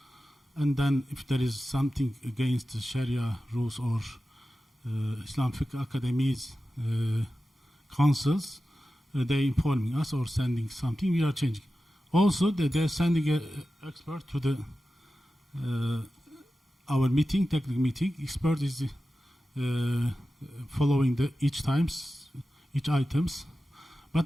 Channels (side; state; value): both; normal; correlation 0.93